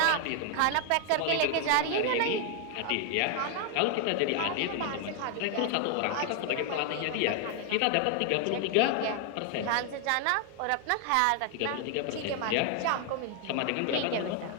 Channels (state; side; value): different; both; correlation 0.00